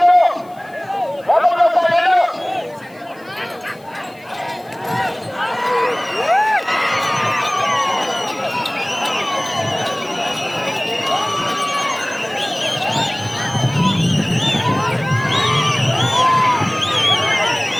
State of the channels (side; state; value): left; noise; hiss, 29 dB below the sound